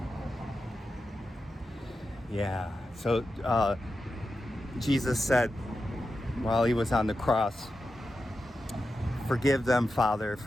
Yeah. So Jesus said while he was on the cross, "Forgive them, Father,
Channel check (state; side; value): normal; both; correlation 0.90